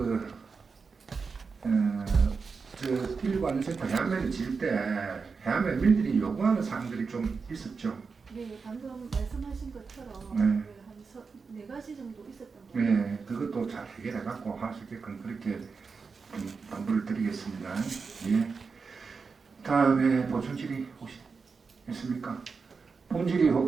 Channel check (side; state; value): left; quieter; 5.0 dB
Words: 저 119 안전센터 해안면을 지을 때 해안면 민들이 요구하는 사항들이 좀 있었죠. 네, 방금 말씀하신 것처럼 네. 한 4가지 정도 있었던 것 같아요. 네, 그것도 잘 해결해갖고 할 수 있게끔 그렇게 좀 당부를 드리겠습니다. 예. 다음에 보충질의 혹시 있습니까? 본질의